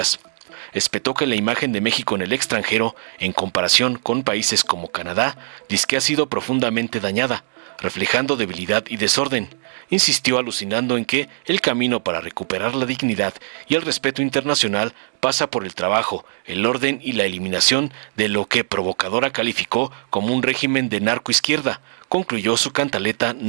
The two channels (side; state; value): left; silent; digital silence